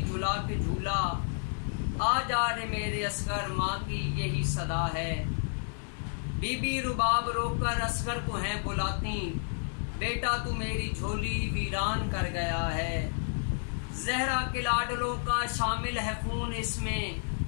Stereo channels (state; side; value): silent; right; digital silence